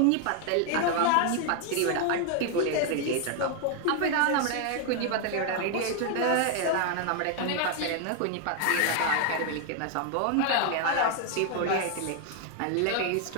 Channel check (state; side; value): different; both; correlation 0.00